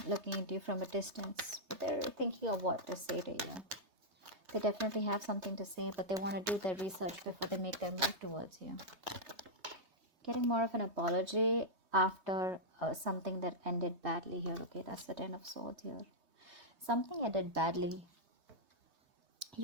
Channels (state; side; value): late; left; 3.3 ms